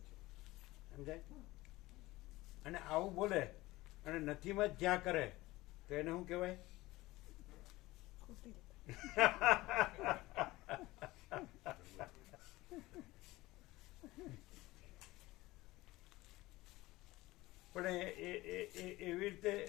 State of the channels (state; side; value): quieter; right; 19.1 dB